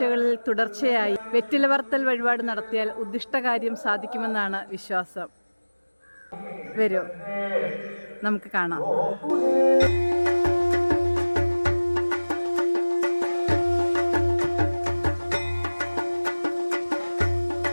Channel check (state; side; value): inverted; both; correlation -1.00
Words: തുടർച്ചയായി വെറ്റില പറത്തൽ വഴിപാട് നടത്തിയാൽ ഉദ്ദിഷ്ടകാര്യം സാധിക്കുമെന്നാണ് വിശ്വാസം. വരൂ, നമുക്ക് കാണാം.